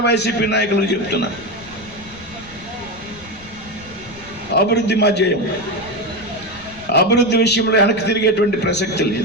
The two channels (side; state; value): left; noise; rumble, 20 dB below the sound